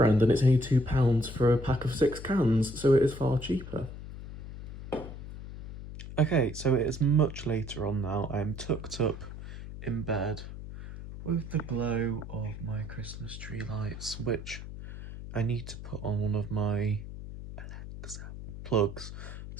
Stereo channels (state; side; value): noise; left; hum, 10 dB below the sound